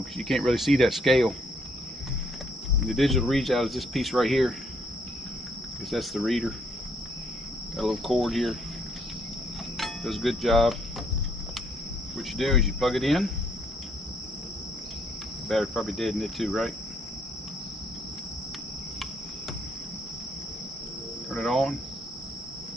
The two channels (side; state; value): both; normal; correlation 0.69